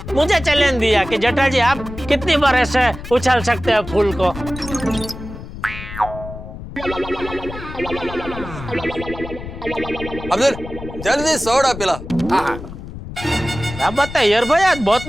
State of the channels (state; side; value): noise; left; rumble, 11 dB below the sound